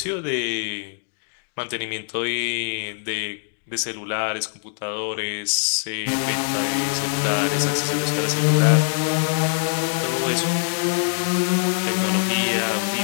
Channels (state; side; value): silent; right; digital silence